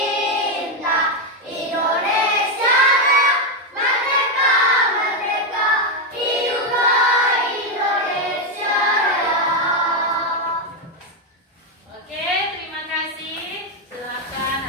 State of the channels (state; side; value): normal; both; correlation 0.05